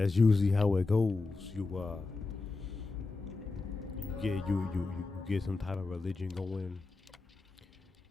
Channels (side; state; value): right; quieter; 3.6 dB